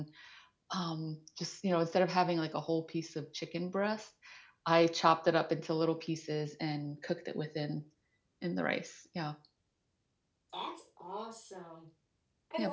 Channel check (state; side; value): identical; both; correlation 1.00